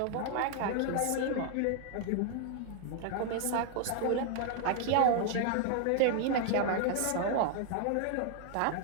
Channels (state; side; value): different; both; correlation 0.00